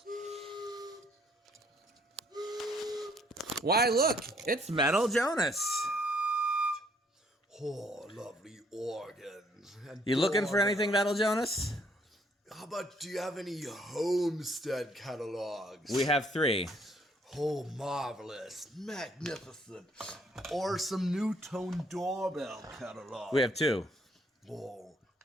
Why, look, it's Metal Jonas. Oh, lovely organs. You looking for anything, Metal Jonas? How about, do you have any Homestead catalogs? We have 3. Oh, marvelous, magnificent. Or some new tone doorbell catalogs. We have 2. Oh,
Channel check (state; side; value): normal; both; correlation 0.66